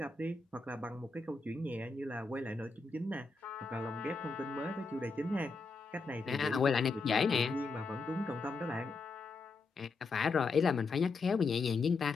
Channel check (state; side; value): quieter; right; 4.0 dB